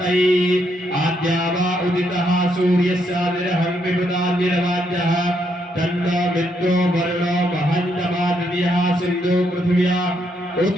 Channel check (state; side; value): normal; both; correlation 0.76